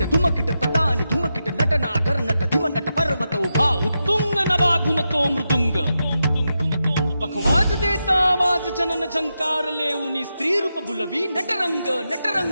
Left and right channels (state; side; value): inverted; both; correlation -0.88